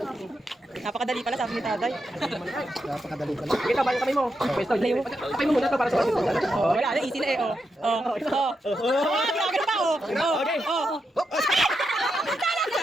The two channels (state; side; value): normal; both; correlation 0.85